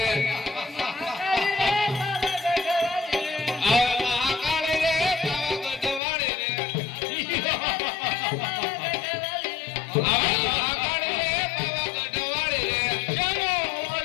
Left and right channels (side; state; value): right; drops out; at 6.0 s